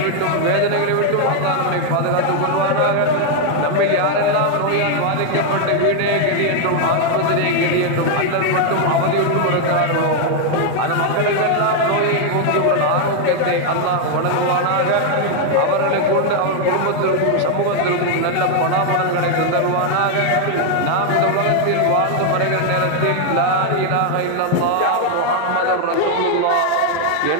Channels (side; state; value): both; different; correlation 0.00